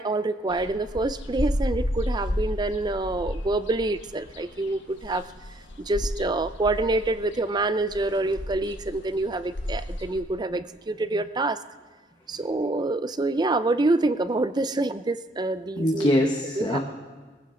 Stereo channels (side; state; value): both; normal; correlation 0.65